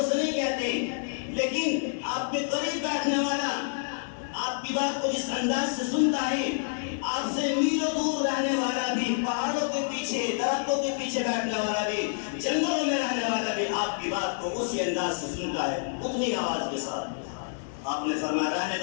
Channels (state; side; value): silent; right; digital silence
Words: سے نہیں کہتے لیکن آپ کے قریب بیٹھنے والا آپ کی بات کو جس انداز سے سنتا ہے، آپ سے میلوں دور رہنے والا بھی، پہاڑوں کے پیچھے، درختوں کے پیچھے بیٹھنے والا بھی، جنگلوں میں رہنے والا بھی آپ کی بات کو اسی انداز سے سنتا ہے، اتنی آواز کے ساتھ. آپ نے فرمایا رہنے